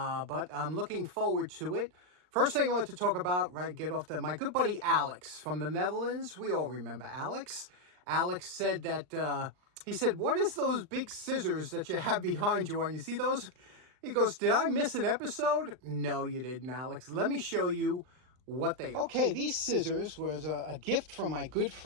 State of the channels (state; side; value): late; left; 39 ms